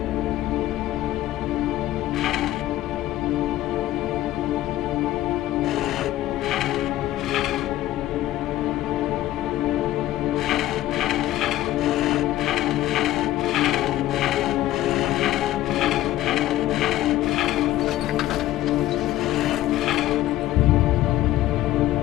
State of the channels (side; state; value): right; quieter; 14.7 dB